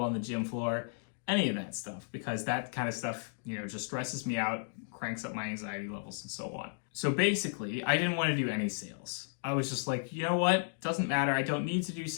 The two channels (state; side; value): silent; right; digital silence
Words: on the gym floor, any of that stuff, because that kind of stuff, just stresses me out, cranks up my anxiety levels and so on. So basically, I didn't want to do any sales. I was just like, you know what? Doesn't matter. I don't need to do